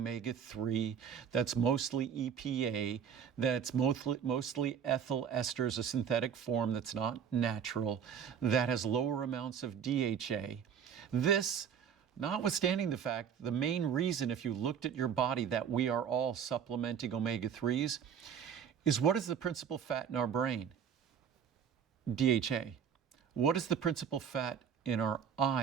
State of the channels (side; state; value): left; quieter; 7.8 dB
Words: that's mostly EPA, that's mostly ethyl esters, a synthetic form that's not natural, that has lower amounts of DHA. This, notwithstanding the fact, the main reason, if you looked at your body, that we are all supplementing omega-3s, is what is the principal fat in our brain? DHA. What is the principal fat in our